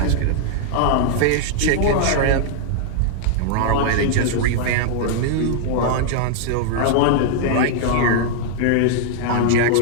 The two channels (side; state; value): both; different; correlation 0.00